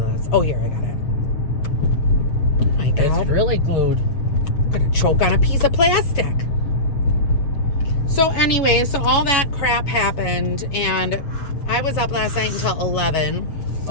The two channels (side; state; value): right; late; 7.2 ms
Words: Oh, here, I got it. Oh my God. It's really glued. I'm gonna choke on a piece of plastic. So anyway, so all that crap happened, and I was up last night until 11.